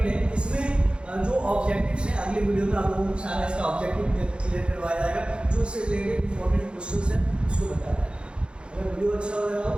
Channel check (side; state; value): left; late; 0.055 ms